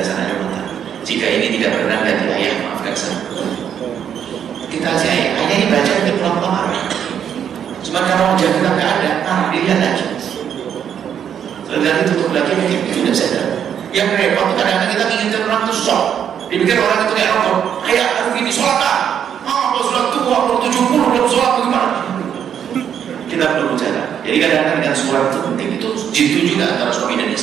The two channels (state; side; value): quieter; left; 8.7 dB